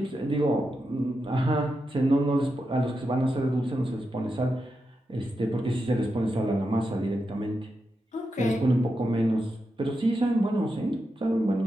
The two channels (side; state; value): both; normal; correlation 0.87